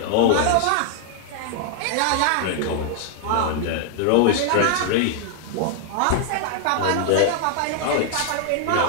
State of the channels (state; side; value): different; both; correlation 0.00